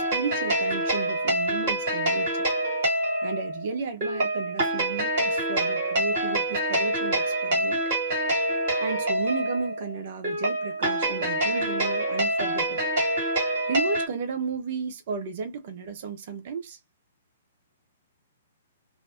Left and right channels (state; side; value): inverted; both; correlation -0.54